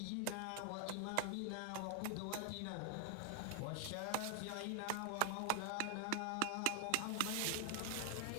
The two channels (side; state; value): both; different; correlation 0.00